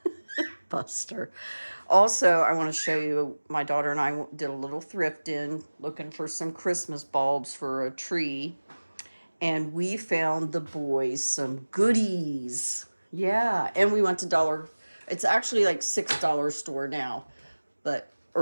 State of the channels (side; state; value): both; inverted; correlation -1.00